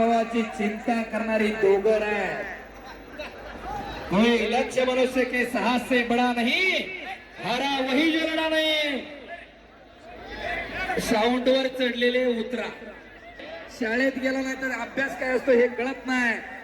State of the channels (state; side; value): identical; both; correlation 1.00